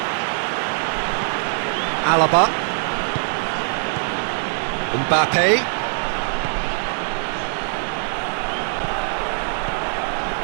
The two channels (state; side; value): silent; left; digital silence